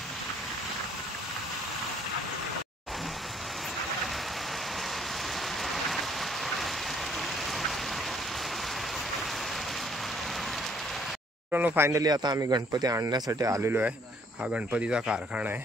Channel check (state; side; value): normal; both; correlation 0.63